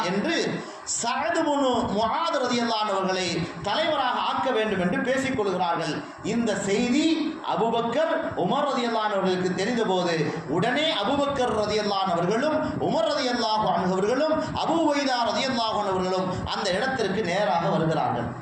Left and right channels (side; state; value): both; identical; correlation 1.00